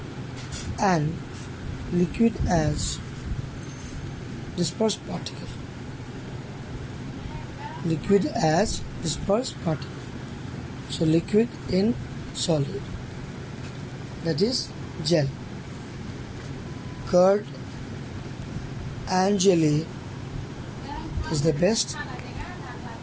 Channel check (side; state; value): both; identical; correlation 1.00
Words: and liquid as dispersed particle. Liquid as dispersed particle. So liquid in solid, that is gel. Curd and jelly is the best